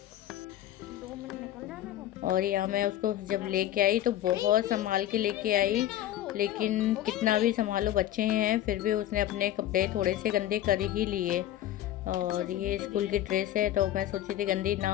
और यहाँ मैं उसको जब लेके आई तो बहुत संभाल के लेके आई, लेकिन कितना भी संभालो बच्चे हैं, फिर भी उसने अपने कपड़े थोड़े से गंदे कर ही लिए। और ये स्कूल की ड्रेस है, तो मैं सोची थी गंदी ना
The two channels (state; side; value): quieter; right; 12.6 dB